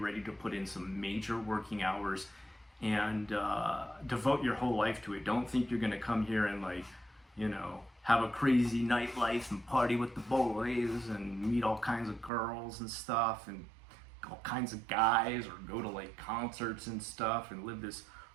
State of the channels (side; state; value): left; drops out; at 12.3 s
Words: to put in some major working hours and devote your whole life to it. Don't think you're gonna come here and like, you know, have a crazy nightlife and party with the boys and meet all kinds of girls and stuff and all kinds of guys, or go to like concerts and stuff and live this